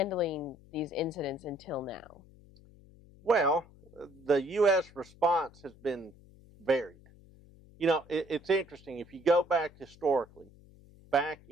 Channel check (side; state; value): left; noise; hum, 24 dB below the sound